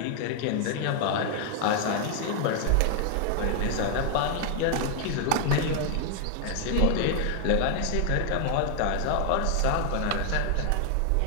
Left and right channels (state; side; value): different; both; correlation 0.00